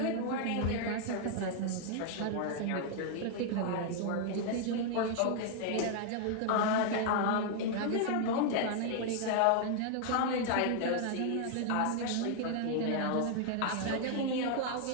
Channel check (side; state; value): both; different; correlation 0.00